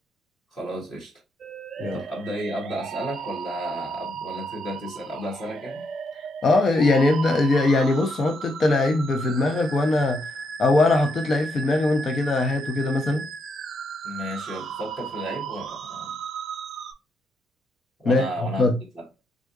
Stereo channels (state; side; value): normal; both; correlation 0.78